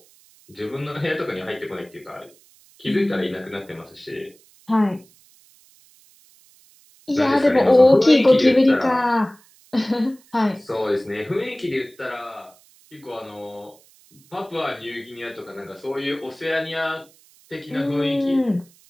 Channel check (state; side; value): noise; right; hiss, 29 dB below the sound